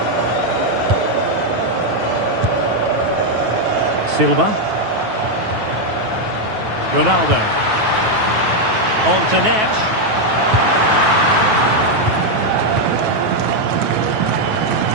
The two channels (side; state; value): left; late; 9.3 ms